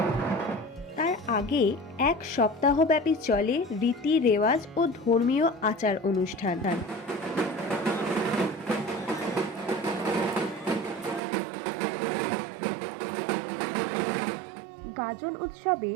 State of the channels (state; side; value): drops out; left; at 11.2 s